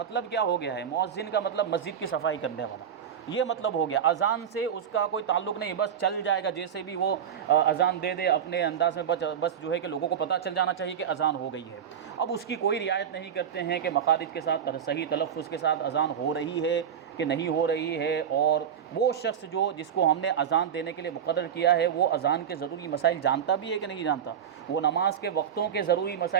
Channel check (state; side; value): quieter; left; 8.4 dB